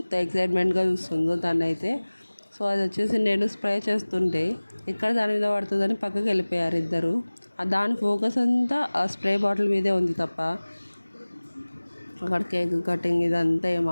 ఎక్సైట్మెంట్గా చూస్తుందో తనైతే. సో అది వచ్చేసి నేను స్ప్రే చేస్తుంటే ఎక్కడ దాని మీద పడుతుందని పక్కకి వెళ్ళిపోయారు ఇద్దరు. దాని ఫోకస్ అంతా ఆ స్ప్రే బాటిల్ మీదే ఉంది తప్ప అక్కడ కేక్ కటింగ్ ఇదంతా ఏం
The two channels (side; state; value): both; inverted; correlation -1.00